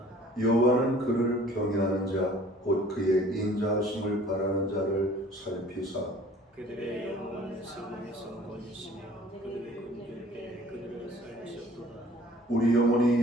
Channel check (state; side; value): normal; both; correlation 0.51